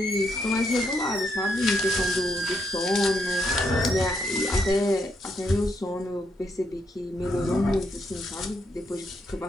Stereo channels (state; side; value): normal; both; correlation 0.77